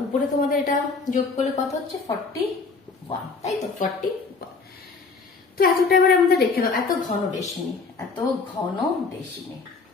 উপরে তোমাদের এটা যোগ করলে কত হচ্ছে 41, তাই তো 41। তো এতটা এবারে আমাদের রেখে দাও, এত ঘন ডেসিমি, এত ঘন ডেসিমি।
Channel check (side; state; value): right; quieter; 4.4 dB